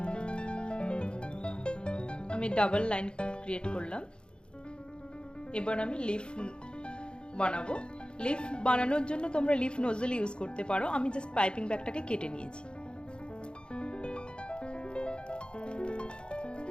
আমি ডাবল লাইন ক্রিয়েট করলাম। এবার আমি লিফ বানাবো। লিফ বানানোর জন্য তোমরা লিফ নজল ইউজ করতে পারো। আমি জাস্ট পাইপিং ব্যাগটাকে কেটে নিয়েছি।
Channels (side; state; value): right; late; 0.052 ms